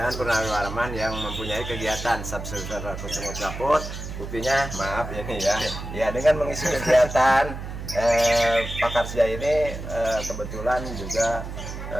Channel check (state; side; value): noise; right; hum, 8 dB below the sound